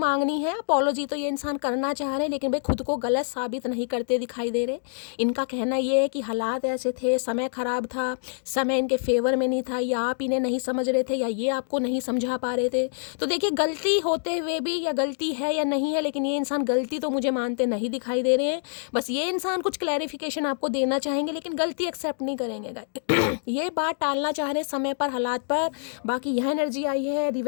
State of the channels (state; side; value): silent; right; digital silence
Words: है, अपोलॉजी तो ये इंसान करना चाह रहे हैं लेकिन भाई खुद को गलत साबित नहीं करते दिखाई दे रहे। इनका कहना ये है कि हालात ऐसे थे, समय ख़राब था, समय इनके फेवर में नहीं था, या आप इन्हें नहीं समझ रहे थे या ये आपको नहीं समझा पा रहे थे। तो देखिए गलती होते हुए भी, या गलती है या नहीं है, लेकिन ये इंसान गलती तो मुझे मानते नहीं दिखाई दे रहे हैं। बस ये इंसान कुछ क्लैरिफिकेशन आपको देना चाहेंगे लेकिन गलती एक्सेप्ट नहीं करेंगे। ये बात टालना चाह रहे समय पर, हालात पर। बाकी यह एनर्जी आई है